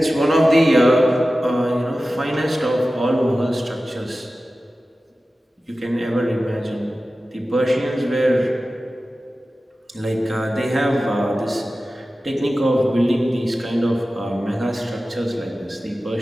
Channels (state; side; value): normal; both; correlation 0.95